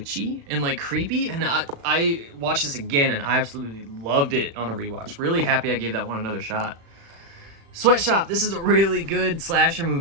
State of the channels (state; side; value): late; left; 36 ms